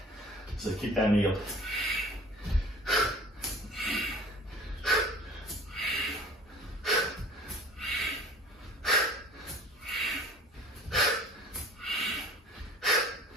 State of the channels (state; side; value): normal; both; correlation 0.46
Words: So keep that knee up.